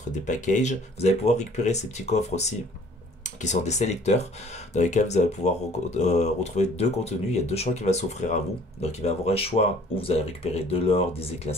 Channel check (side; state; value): both; normal; correlation 0.54